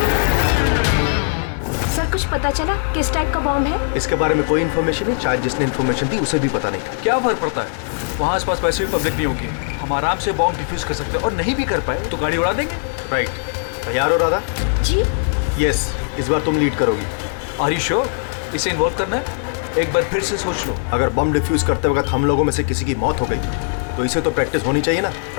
सर कुछ पता चला किस टाइप का बॉम्ब है? इसके बारे में कोई इन्फॉर्मेशन नहीं, शायद जिसने इन्फॉर्मेशन दी उसे भी पता नहीं। क्या फर्क पड़ता है, वहाँ आसपास वैसे भी पब्लिक नहीं होगी, हम आराम से बॉम्ब डिफ्यूज कर सकते हैं। और नहीं भी कर पाए तो गाड़ी उड़ा देंगे। राइट, तैयार हो राधा? जी यस, इस बार तुम लीड करोगी। आर यू श्योर इसे इन्वॉल्व करना है? एक बार फिर से सोच लो। अगर बम डिफ्यूज करते वक्त हम लोगों में से किसी की मौत हो गई तो इसे तो प्रैक्टिस होनी चाहिए ना,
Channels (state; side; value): silent; right; digital silence